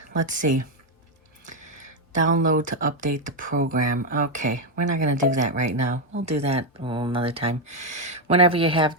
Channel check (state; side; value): normal; both; correlation 0.04